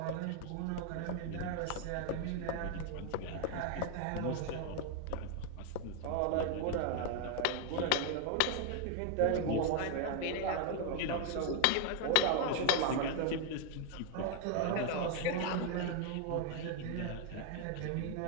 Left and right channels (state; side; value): different; both; correlation 0.01